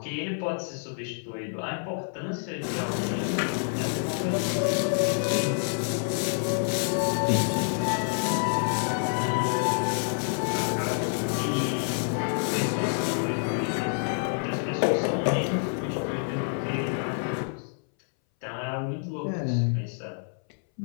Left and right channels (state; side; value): silent; right; 60 dB below the other